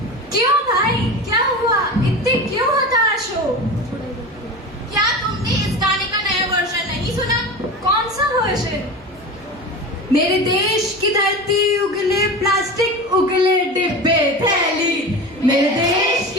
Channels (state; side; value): normal; both; correlation 0.29